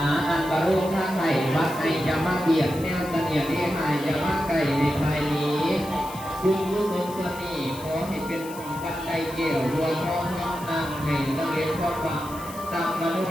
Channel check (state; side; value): noise; left; hiss, 16 dB below the sound